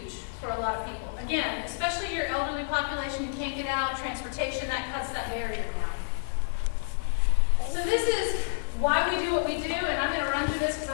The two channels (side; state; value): right; silent; 59 dB below the other